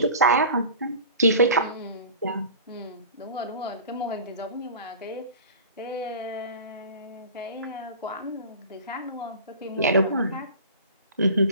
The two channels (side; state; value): both; inverted; correlation -0.37